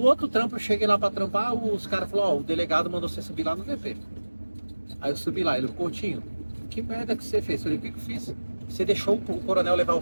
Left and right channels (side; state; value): both; inverted; correlation -1.00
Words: outro trampo, eu cheguei lá pra trampar, os caras falaram, ó, o delegado mandou você subir lá no DP. Aí eu subi lá, ele, Coutinho, que merda que você fez? Eu falei, o que eu fiz? Você deixou o coronel levar